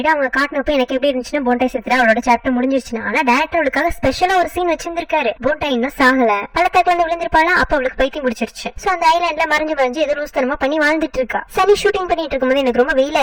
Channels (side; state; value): both; identical; correlation 1.00